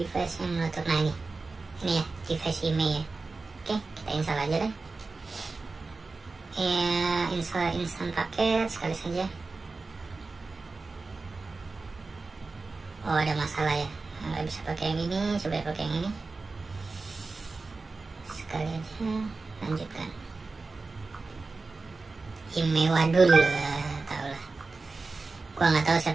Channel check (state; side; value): quieter; left; 3.8 dB